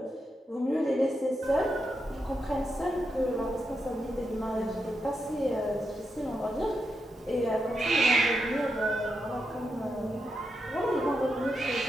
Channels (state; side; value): normal; both; correlation 0.85